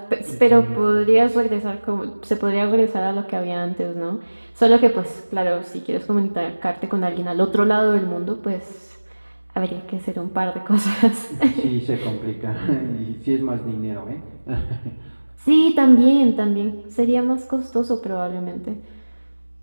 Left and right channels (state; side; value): inverted; both; correlation -1.00